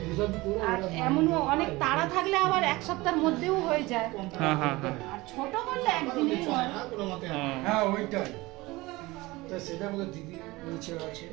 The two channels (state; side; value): quieter; left; 21.2 dB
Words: ये सब पूरा আর এমনও অনেক তাড়া থাকলে আবার এক সপ্তাহের মধ্যেও হয়ে যায়। হ্যাঁ হ্যাঁ হ্যাঁ আর ছোট করলে একদিনেই হয়। কোনো মতে হ্যাঁ ওইটাই। তা সেটা বলে দিদি নিচে আছে,